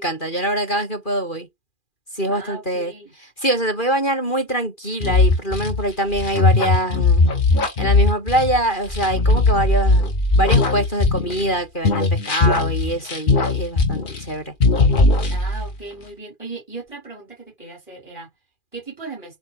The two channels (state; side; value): late; right; 2.4 ms